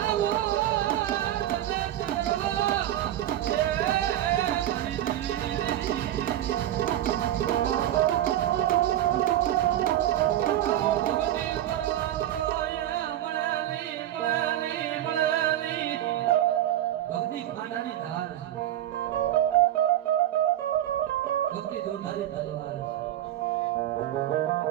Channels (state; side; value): quieter; left; 12.6 dB